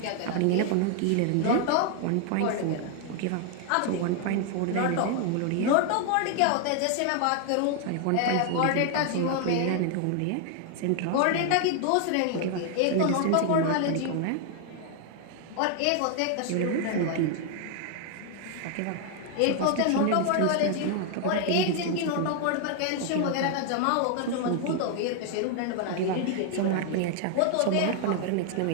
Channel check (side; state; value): both; different; correlation 0.00